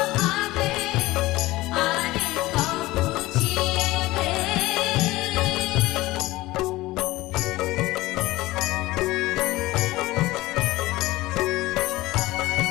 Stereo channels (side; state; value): right; quieter; 18.8 dB